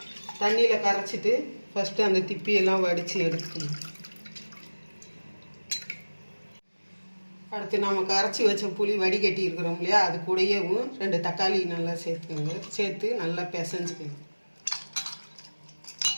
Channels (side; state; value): both; inverted; correlation -1.00